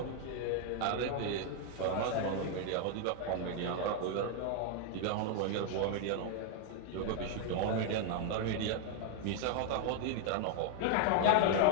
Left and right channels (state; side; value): different; both; correlation 0.00